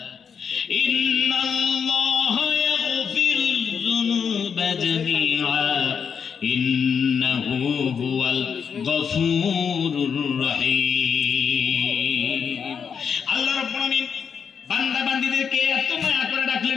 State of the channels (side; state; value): right; quieter; 6.7 dB